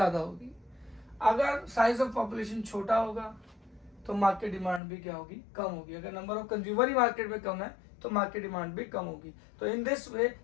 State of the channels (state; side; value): drops out; right; at 4.8 s